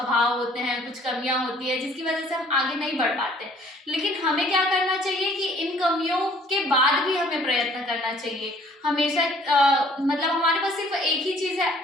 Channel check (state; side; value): normal; both; correlation 0.57